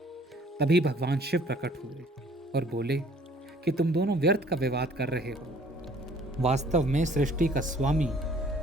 तभी भगवान शिव प्रकट हुए और बोले कि तुम दोनों व्यर्थ का विवाद कर रहे हो। वास्तव में सृष्टि का स्वामी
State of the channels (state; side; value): normal; both; correlation 0.56